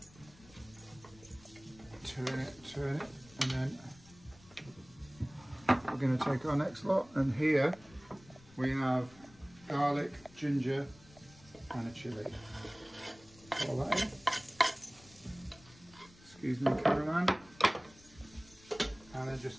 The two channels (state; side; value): noise; left; rumble, 24 dB below the sound